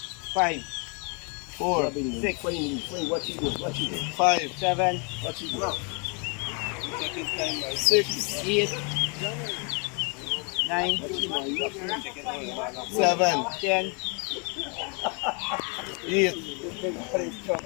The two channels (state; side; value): quieter; right; 35.1 dB